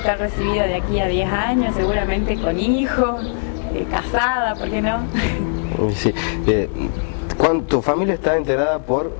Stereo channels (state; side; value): silent; right; digital silence